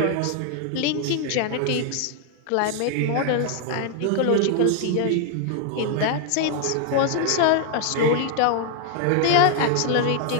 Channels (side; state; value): both; different; correlation 0.00